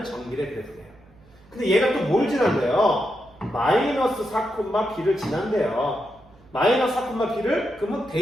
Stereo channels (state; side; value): noise; right; hum, 27 dB below the sound